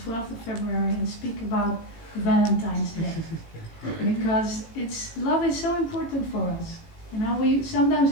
of February and speak about Valentine's Day because love is so important for us. You know, we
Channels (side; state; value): right; late; 18 ms